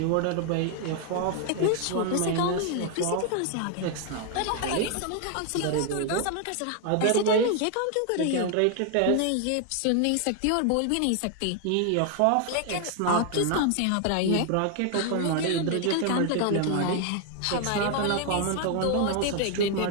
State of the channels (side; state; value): both; different; correlation 0.00